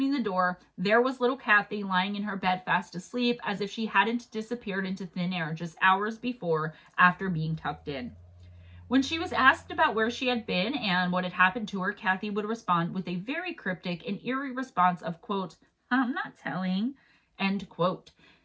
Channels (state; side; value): identical; both; correlation 1.00